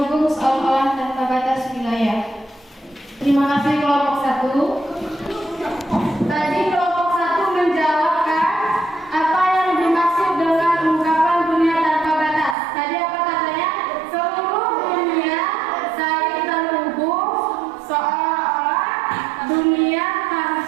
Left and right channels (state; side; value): drops out; left; at 12.6 s